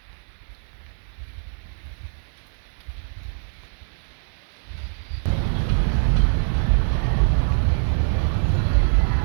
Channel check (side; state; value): left; silent; 57 dB below the other